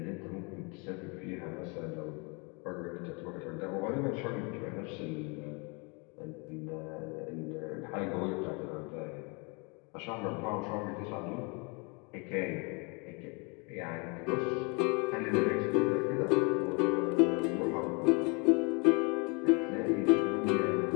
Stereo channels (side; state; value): right; quieter; 31.9 dB